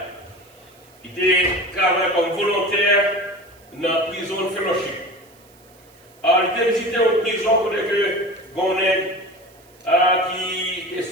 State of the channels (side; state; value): right; noise; hiss, 28 dB below the sound